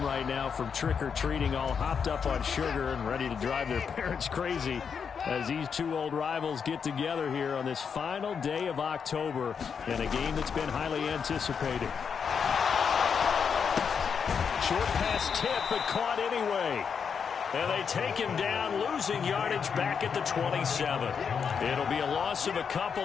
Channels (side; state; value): right; quieter; 6.5 dB